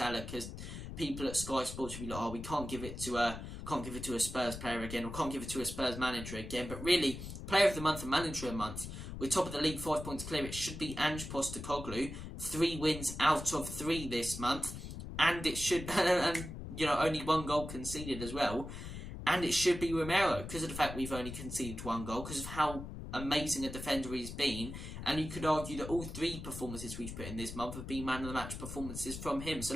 because people at Sky Sports will be like, oh, we can't give it to a Spurs player again, or can't give it to a Spurs manager again. But really, Player of the Month and Manager of the Month, we're top of the league, 5 points clear. It should be Ange Postecoglou, 3 wins out of 3 this month, and it should, and only 1 goal conceded as well. And it should be Romero, because of the fact we've only conceded 1 goal, because of how amazing a defender he's been. And you could argue that all 3 performances we've put in this month have been man of the match performances from him. So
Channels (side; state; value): left; noise; rumble, 9 dB below the sound